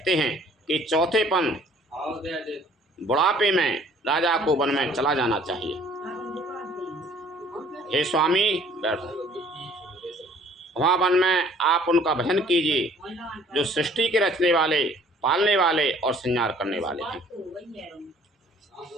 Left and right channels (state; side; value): normal; both; correlation 0.56